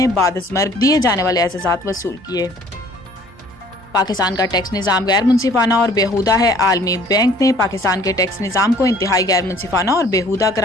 बाद अज़ मर्ग दिए जाने वाले एजाज़ात वसूल किए। पाकिस्तान का टैक्स निज़ाम गैर मुनसिफाना और बेहुदा है। आलमी बैंक ने पाकिस्तान के टैक्स निज़ाम को इंतहाई गैर मुनसिफाना और बेहुदा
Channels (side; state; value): both; normal; correlation 0.55